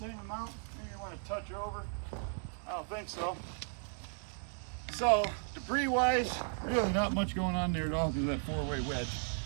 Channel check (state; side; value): silent; left; 54 dB below the other